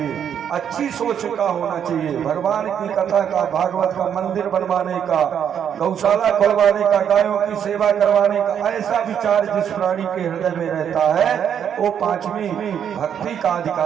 अच्छी सोच का होना चाहिए, भगवान की कथा का, भागवत का मंदिर बनवाने का, गौशाला खुलवाने का, गायों की सेवा करवाने का, ऐसा विचार जिस प्राणी के हृदय में रहता है वो पांचवी भक्ति का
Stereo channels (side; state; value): left; quieter; 8.6 dB